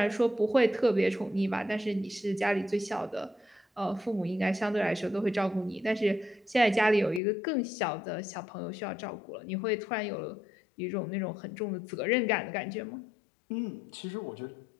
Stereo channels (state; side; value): drops out; right; at 7.2 s